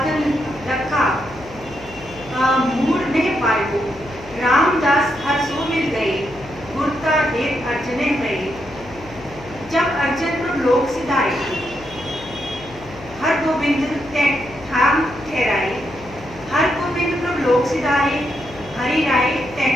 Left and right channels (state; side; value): noise; left; hum, 19 dB below the sound